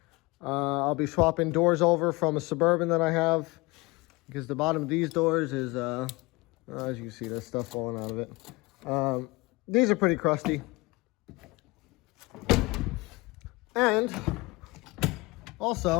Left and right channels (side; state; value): right; quieter; 23.7 dB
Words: I'll be swapping doors over from a Suburban that I have, because the bottom of these doors is, as you can see, there's stuff falling out of it. These are pretty crusty. And